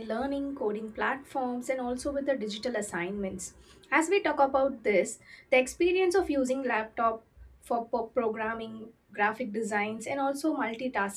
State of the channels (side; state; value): both; identical; correlation 1.00